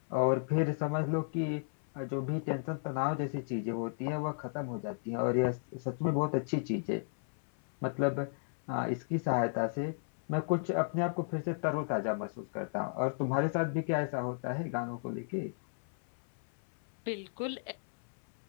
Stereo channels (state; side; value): silent; right; 55 dB below the other